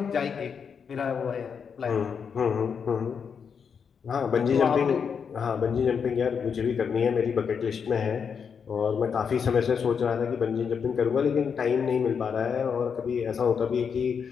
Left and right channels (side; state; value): right; quieter; 6.6 dB